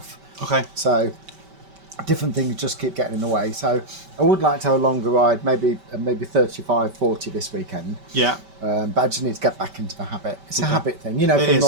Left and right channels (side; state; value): left; late; 5.2 ms